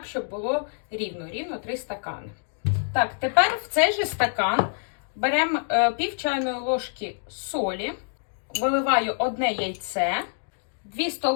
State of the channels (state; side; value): silent; right; digital silence